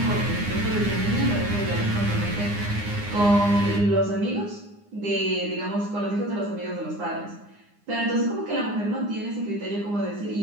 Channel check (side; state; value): left; late; 9.8 ms